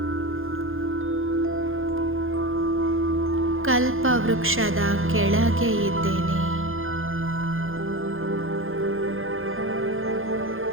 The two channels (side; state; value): left; late; 0.60 ms